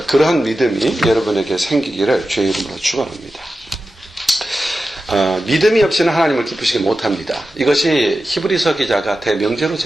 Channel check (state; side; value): normal; both; correlation 0.93